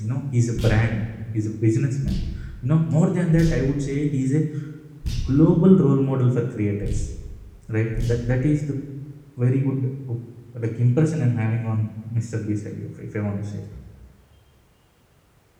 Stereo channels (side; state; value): both; identical; correlation 1.00